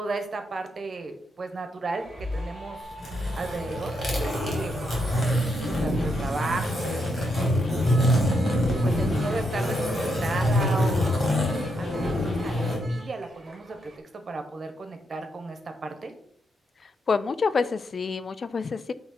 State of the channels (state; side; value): normal; both; correlation 0.80